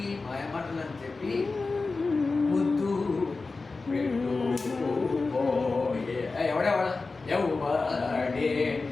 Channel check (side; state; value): right; quieter; 3.9 dB